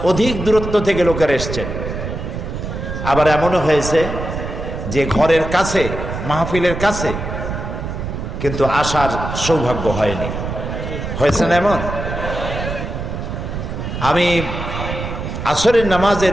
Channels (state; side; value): noise; right; rumble, 6 dB below the sound